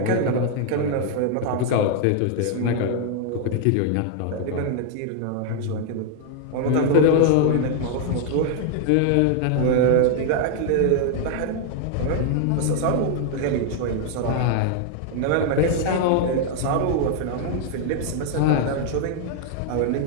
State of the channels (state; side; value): different; both; correlation 0.00